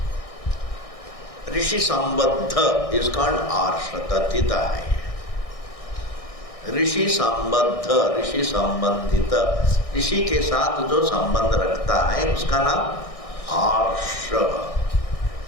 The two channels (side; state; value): right; late; 1.6 ms